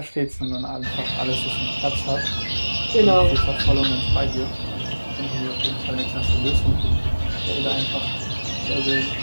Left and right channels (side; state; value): both; inverted; correlation -1.00